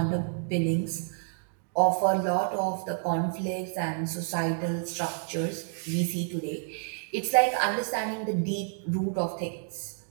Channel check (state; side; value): silent; left; digital silence